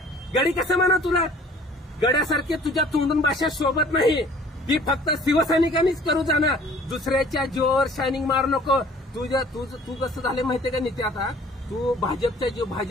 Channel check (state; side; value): normal; both; correlation 0.52